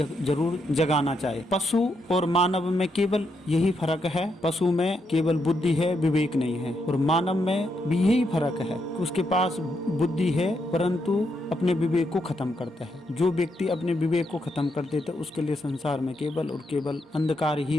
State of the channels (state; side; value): normal; both; correlation 0.80